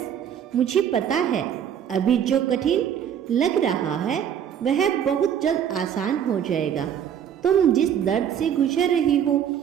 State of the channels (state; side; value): quieter; left; 9.1 dB